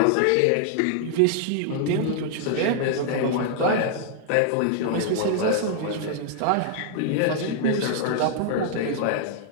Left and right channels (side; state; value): both; different; correlation 0.00